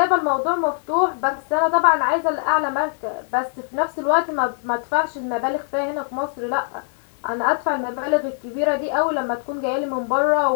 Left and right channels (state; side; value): silent; right; 63 dB below the other